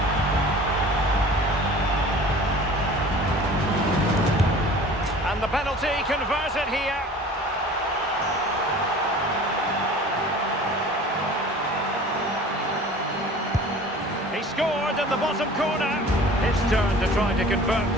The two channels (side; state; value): both; normal; correlation 0.44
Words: And the penalty converted here. He scored in the bottom corner. His turn to try to convert